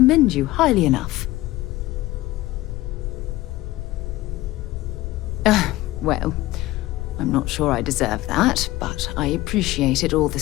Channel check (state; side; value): quieter; right; 17.5 dB